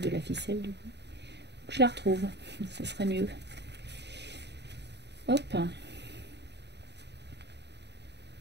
la ficelle du coup. Je la retrouve, ça serait mieux. Hop.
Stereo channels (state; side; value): late; left; 0.50 ms